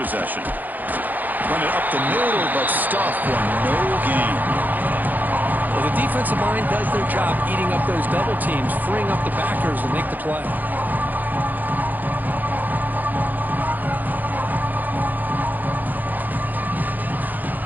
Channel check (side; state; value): left; late; 0.084 ms